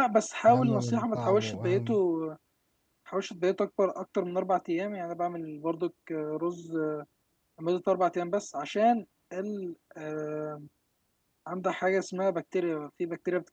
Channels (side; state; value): both; identical; correlation 1.00